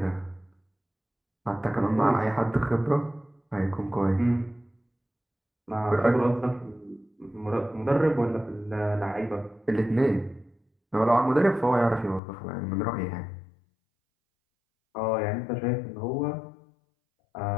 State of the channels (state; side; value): drops out; right; at 12.2 s